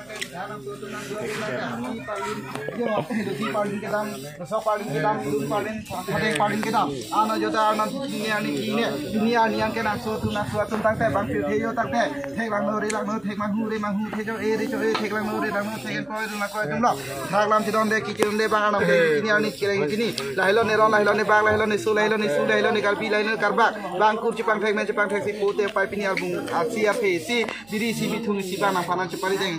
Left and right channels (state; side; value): noise; right; hum, 28 dB below the sound